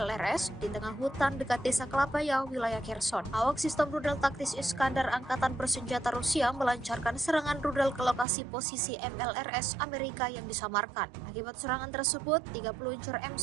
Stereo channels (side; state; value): left; drops out; at 8.2 s